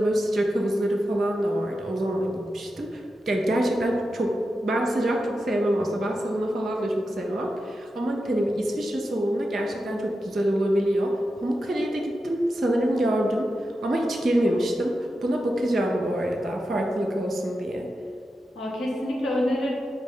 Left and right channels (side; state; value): both; normal; correlation 0.89